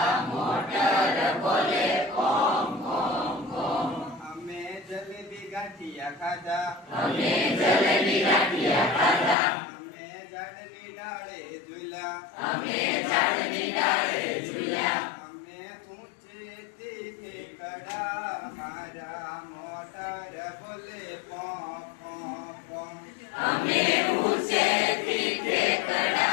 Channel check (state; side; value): drops out; right; at 9.3 s